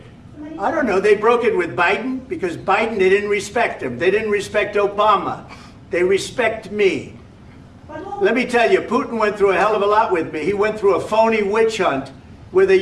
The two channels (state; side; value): identical; both; correlation 1.00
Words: I don't know. They broke it with Biden because Biden, they didn't respect him. They didn't respect Obama. They respect me. Let me tell you, Putin went through a hell of a lot with me. He went through a phony witch hunt where they